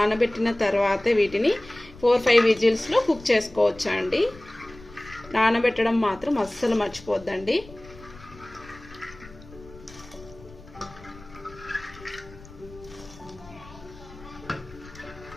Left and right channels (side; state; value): left; noise; rumble, 20 dB below the sound